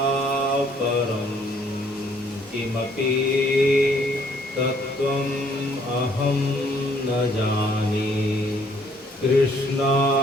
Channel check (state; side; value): normal; both; correlation 0.64